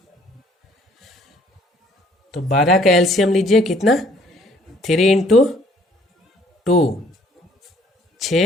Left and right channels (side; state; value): both; normal; correlation 0.60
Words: तो 12 का एलसीएम लीजिए, कितना? 3 इंटू 2